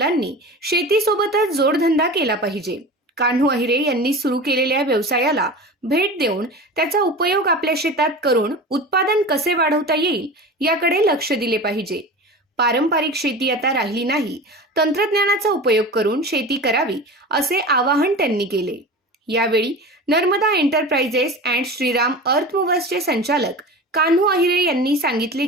शेतीसोबतच जोडधंदा केला पाहिजे. कान्हू अहिरे यांनी सुरू केलेल्या व्यवसायाला भेट देऊन त्याचा उपयोग आपल्या शेतात करून उत्पादन कसे वाढवता येईल याकडे लक्ष दिले पाहिजे. पारंपरिक शेती आता राहिली नाही, तंत्रज्ञानाचा उपयोग करून शेती करावी असे आवाहन त्यांनी केले. यावेळी नर्मदा एंटरप्राइजेस अँड श्रीराम अर्थ मूव्हर्सचे संचालक कान्हू अहिरे यांनी सांगितले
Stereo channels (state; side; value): normal; both; correlation 0.32